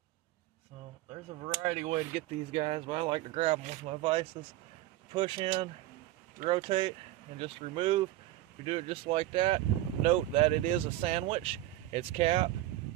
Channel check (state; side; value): quieter; left; 15.2 dB